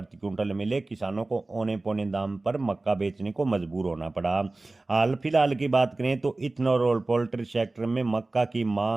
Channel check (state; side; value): quieter; left; 3.1 dB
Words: क्विंटल मिले। किसानों को औने पौने दाम पर मक्का बेचने को मजबूर होना पड़ा। हाल फिलहाल की बात करें तो इथेनॉल और पोल्ट्री सेक्टर में मक्का की